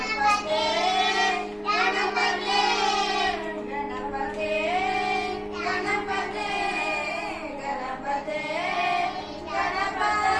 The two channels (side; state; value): both; identical; correlation 1.00